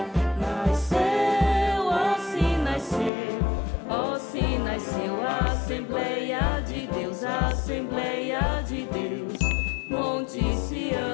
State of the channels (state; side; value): drops out; right; at 3.1 s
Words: Nasceu, ó se nasceu, ó se nasceu, Assembleia de Deus, Assembleia de Deus, Monte